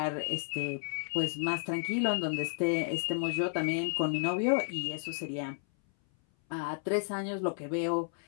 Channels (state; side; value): silent; right; 56 dB below the other